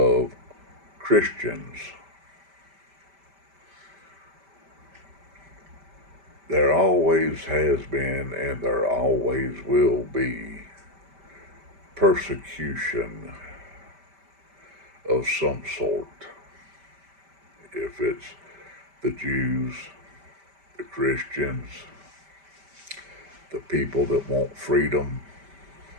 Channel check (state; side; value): late; left; 5.1 ms